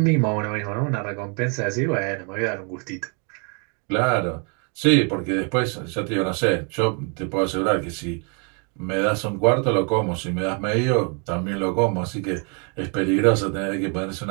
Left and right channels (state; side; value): quieter; left; 36.9 dB